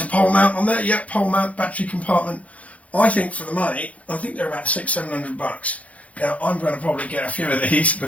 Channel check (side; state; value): right; late; 0.067 ms